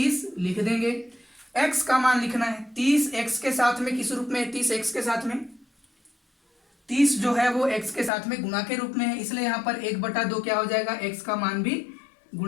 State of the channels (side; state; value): right; drops out; at 8.1 s